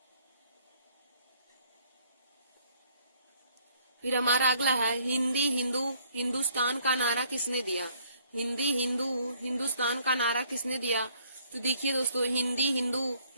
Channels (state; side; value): inverted; both; correlation -0.63